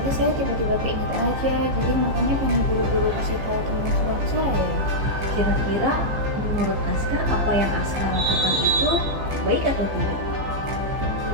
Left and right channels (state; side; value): late; left; 15 ms